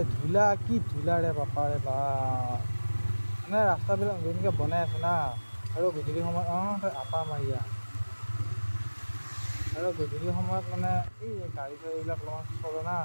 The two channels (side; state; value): both; inverted; correlation -1.00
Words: ধূলা কি ধূলাৰে বাপাৰে বা মানে ৰাস্তাবিলাক যেনেকৈ বনাই আছে না আৰু গধূলি সময়ত আপা মাৰিয়া আৰু গধূলি সময়ত মানে এই গাড়ী চাড়ীবিলাক অলপমান চলে না